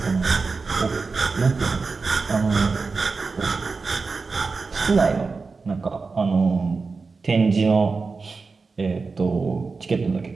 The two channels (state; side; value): quieter; left; 4.4 dB